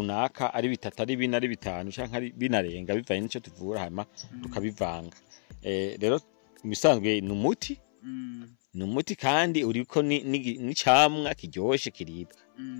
ari bitatu ari bine ari bitanu canke ari binarenga bivanye n'ico tuvura hama tukabivanga rero misanzwe ni umuti kandi uriko ni camwa kiryoshe kiribwa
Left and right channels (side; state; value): right; silent; 58 dB below the other